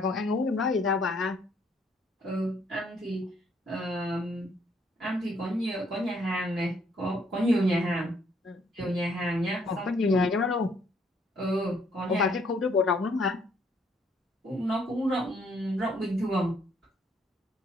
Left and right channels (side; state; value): both; normal; correlation 0.67